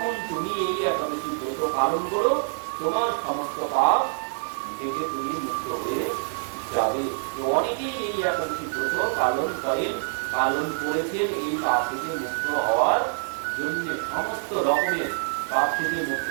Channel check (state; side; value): silent; left; digital silence